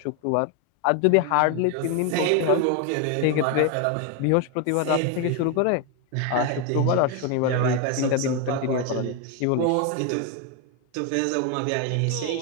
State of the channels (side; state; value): both; different; correlation 0.01